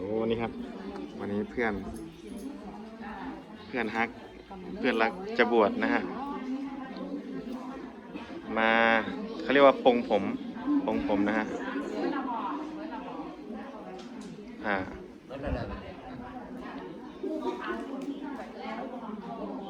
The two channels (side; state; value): both; identical; correlation 1.00